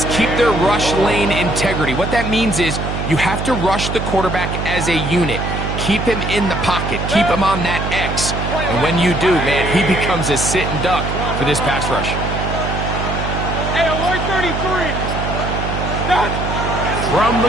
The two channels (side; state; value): right; noise; hum, 3 dB below the sound